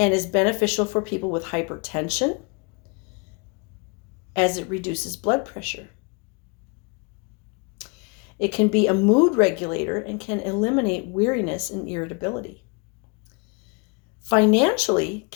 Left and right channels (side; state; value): right; quieter; 32.5 dB